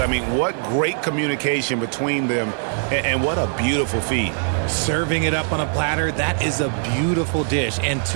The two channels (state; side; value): silent; left; 58 dB below the other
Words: mean, what great communication between them, and what a beautiful feed. Serving it up on a platter, that is a beautiful dish. And